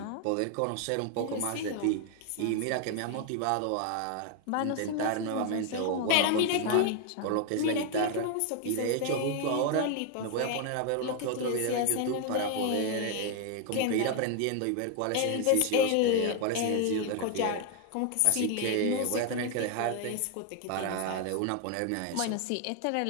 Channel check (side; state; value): both; different; correlation 0.01